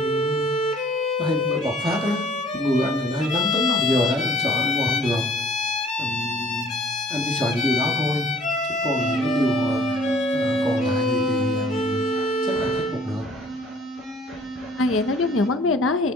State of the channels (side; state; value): both; normal; correlation 0.55